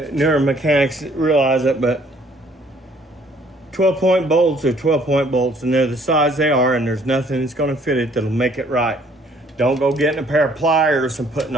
newer mechanics realize it, but 12 point bolts are 12 point bolts, and they're the size they are, and there's nothing that's going to fit it that'll make it right. Don't go getting a pair of pliers and putting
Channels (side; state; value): both; normal; correlation 0.61